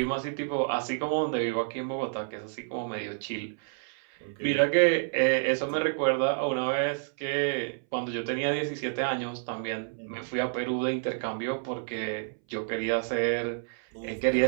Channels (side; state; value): left; silent; 58 dB below the other